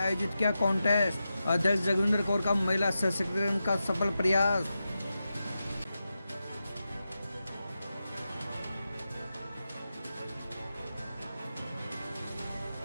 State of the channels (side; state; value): both; inverted; correlation -0.90